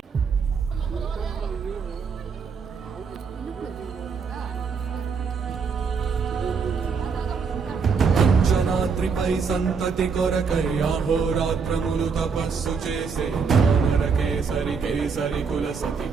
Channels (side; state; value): left; quieter; 5.5 dB